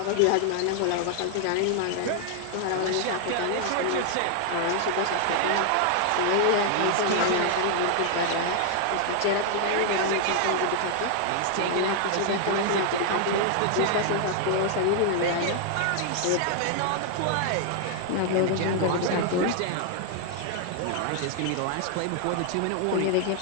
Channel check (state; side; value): different; both; correlation 0.00